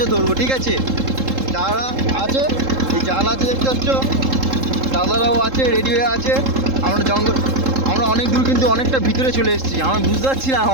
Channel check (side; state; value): left; late; 3.7 ms